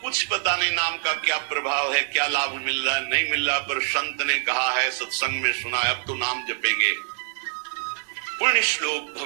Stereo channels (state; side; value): silent; left; digital silence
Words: कुछ पता नहीं नाम का क्या प्रभाव है, क्या लाभ मिल रहा है नहीं मिल रहा, पर संत ने कहा है, सत्संग में सुना है, अब तो नाम जपेंगे। पुण्य श्लोक